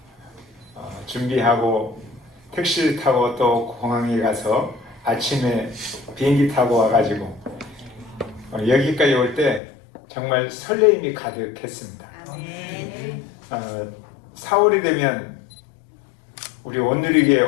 준비하고 택시를 타고 또 공항에 가서 아침에 비행기 타고 와가지고 여기까지 올 때 정말 설레임이 가득했습니다. 4월이 되면 우리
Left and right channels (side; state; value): right; drops out; at 9.6 s